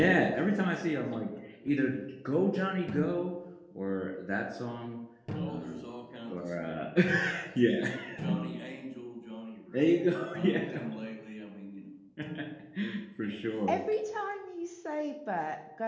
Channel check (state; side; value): identical; both; correlation 1.00